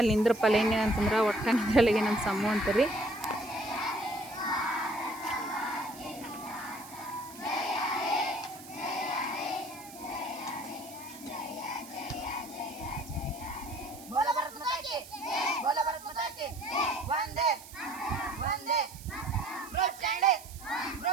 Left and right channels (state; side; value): noise; right; hiss, 17 dB below the sound